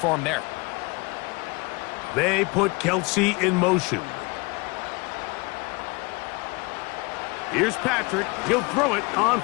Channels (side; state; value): right; quieter; 27.1 dB